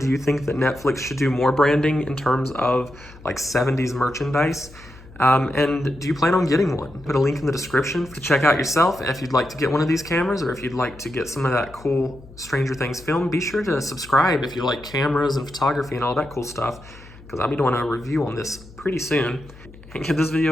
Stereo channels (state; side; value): noise; left; hum, 20 dB below the sound